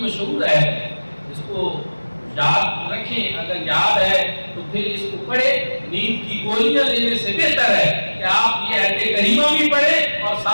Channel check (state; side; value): inverted; both; correlation -1.00